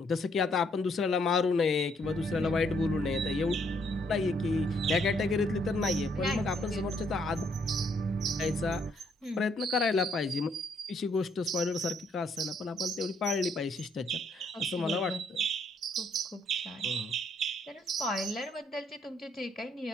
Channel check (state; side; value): normal; both; correlation 0.69